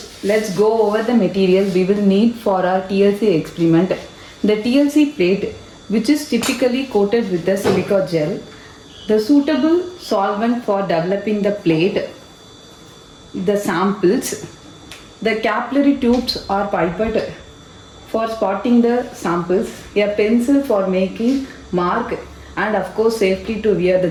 let's go over the material we will need for our TLC experiment. The TLC plate, which is typically coated with the silica gel, the suitable solvent for developing the plate, the samples, the capillary tubes are pipette for spotting the samples, a pencil for making mark, and of course safety to wear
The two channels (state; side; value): identical; both; correlation 1.00